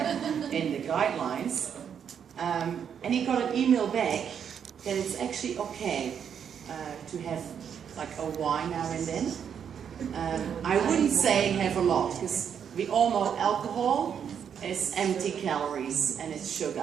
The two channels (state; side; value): quieter; left; 7.9 dB